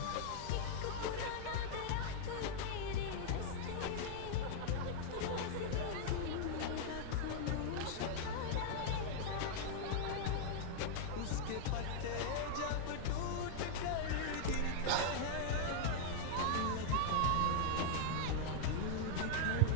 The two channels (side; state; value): both; different; correlation -0.01